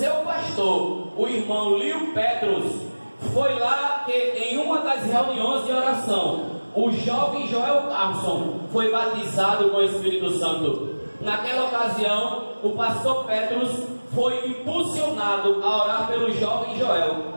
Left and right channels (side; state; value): both; inverted; correlation -1.00